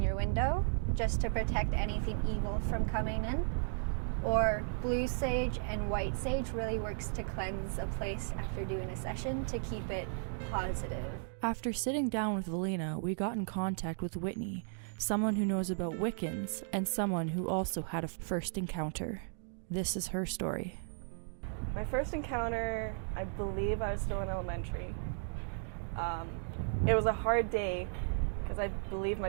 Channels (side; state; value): left; silent; digital silence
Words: your window just to protect anything evil from coming in. Or blue sage and white sage really works to cleanse a place after doing a session to keep it positive. After sitting down with Valina, we got in contact with Whitney, someone who knows about Wiccans and someone who also had a first encounter. This is her story. My first encounter, I believe I was still in elementary. It was a hard day because I believe my